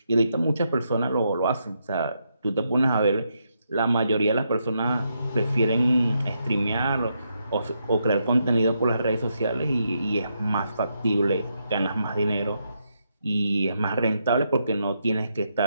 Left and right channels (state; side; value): inverted; both; correlation -0.80